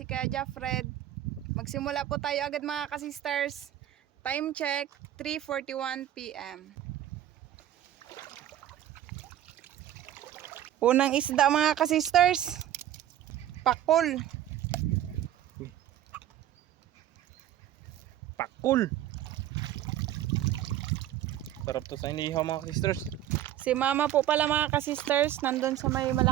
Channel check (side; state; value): left; quieter; 12.1 dB